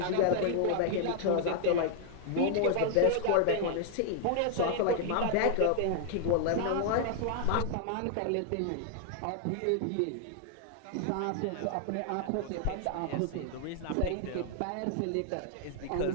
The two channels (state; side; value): different; both; correlation 0.00